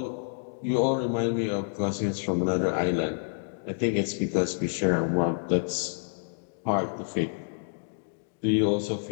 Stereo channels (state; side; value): silent; right; digital silence